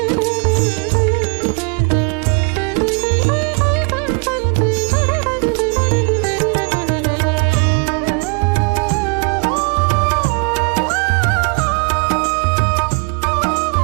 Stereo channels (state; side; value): quieter; left; 35.5 dB